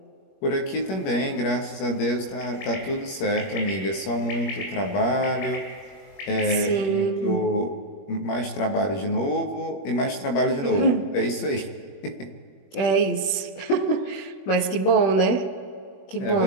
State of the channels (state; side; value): late; right; 21 ms